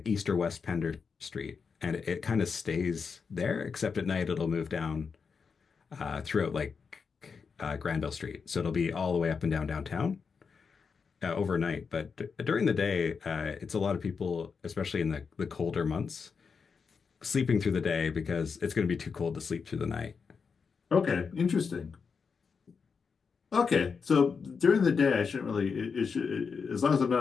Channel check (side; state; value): right; quieter; 5.6 dB